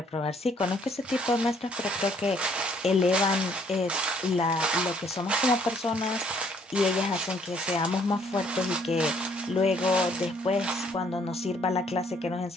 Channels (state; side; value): normal; both; correlation 0.64